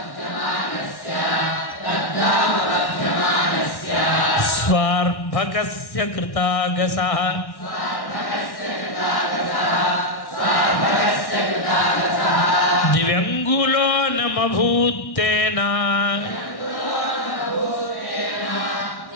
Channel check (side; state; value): right; late; 1.6 ms